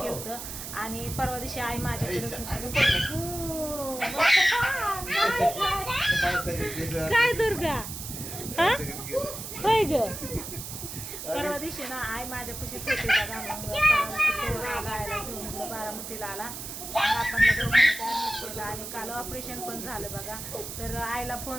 होतं आणि परवा दिवशी आई माझ्याकडेच काय दुर्गा हा होय ग. परवा दिवशी ना आई माझ्यापाशीच होती बघा. मग परवा दिवशी आला घेऊन बारामतीला आला आपण दवाखान्यात केलं आणि काल ऑपरेशन पण झालं बघा. तर आईला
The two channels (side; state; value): right; noise; hiss, 8 dB below the sound